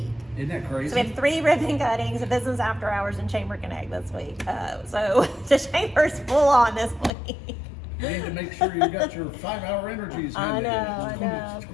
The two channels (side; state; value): right; drops out; at 7.1 s